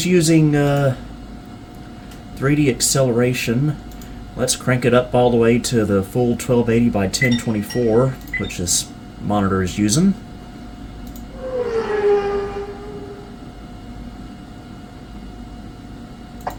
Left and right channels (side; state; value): both; identical; correlation 1.00